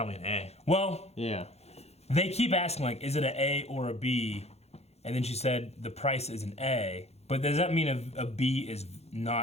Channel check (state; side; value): late; right; 0.31 ms